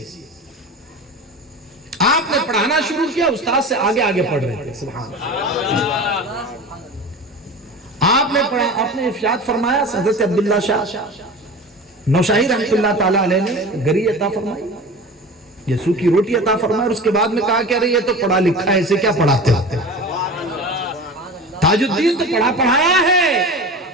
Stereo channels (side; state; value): both; normal; correlation 0.33